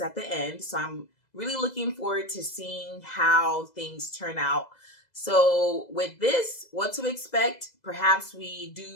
the end. So I'm really looking forward to seeing how things turn out. So with this, what to expect? Perhaps we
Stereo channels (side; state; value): right; late; 2.0 ms